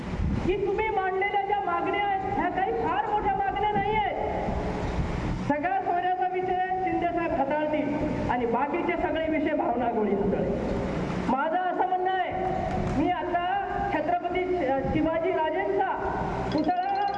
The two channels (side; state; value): both; identical; correlation 1.00